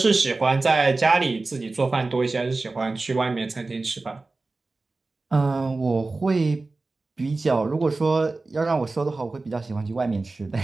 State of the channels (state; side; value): quieter; left; 3.5 dB